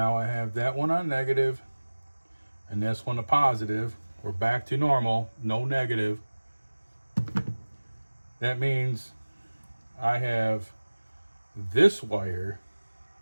I have that one on negative and this one a positive. We're back to normal, no negative. That means I have this wire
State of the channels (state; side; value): inverted; both; correlation -1.00